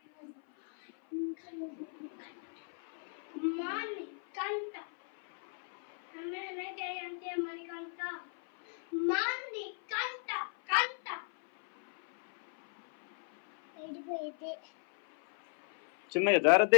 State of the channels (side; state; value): right; silent; 54 dB below the other